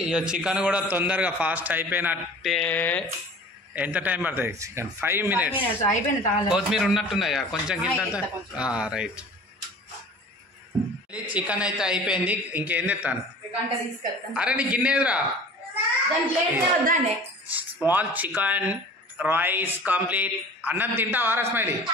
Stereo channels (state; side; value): normal; both; correlation 0.43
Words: ఇక చికెన్ కూడా తొందరగా ఫాస్ట్ అయిపోయినట్టే. ఎంత టైం పడుతుంది? Chicken 5 minutes. కొత్తిమీర ఉన్నట్టున్నాయా కొంచెం కింద? రైట్. చికెన్ అయితే అయిపోయింది, ఇంకేం తెస్తాను. అరే నీ గిన్నెదురా, స్మాల్ చికెన్ రైస్ కంప్లీట్. అన్నం తింటావా స్మైలీ?